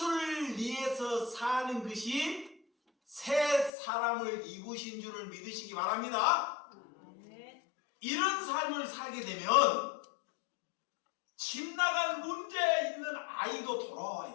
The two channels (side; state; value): right; drops out; at 3.7 s